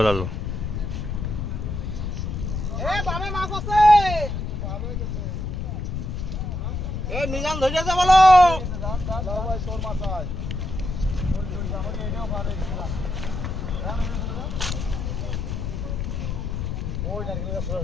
মিজান ধরেছে বলো।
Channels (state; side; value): noise; left; rumble, 3 dB below the sound